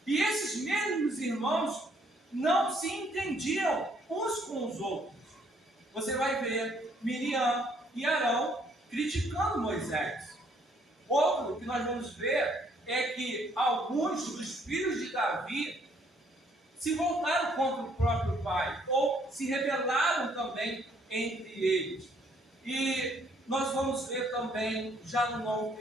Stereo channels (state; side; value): normal; both; correlation 0.66